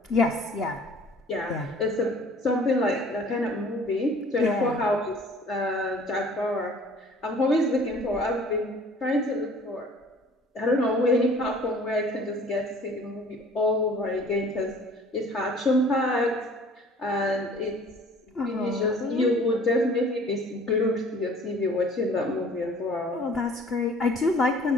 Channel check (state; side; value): normal; both; correlation 0.51